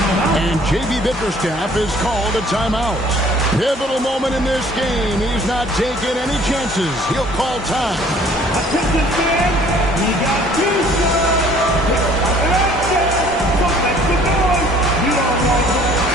And J.B. Bickerstaff is called a timeout. Pivotal moment in this game. He's not taking any chances. He'll call time. Attention fans, we got 2 shots. So make the noise. You don't want to.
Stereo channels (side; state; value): both; normal; correlation 0.55